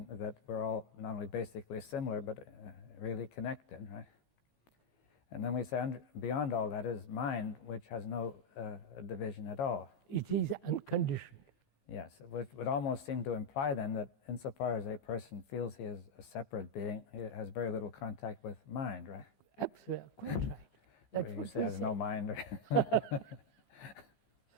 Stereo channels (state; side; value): late; right; 15 ms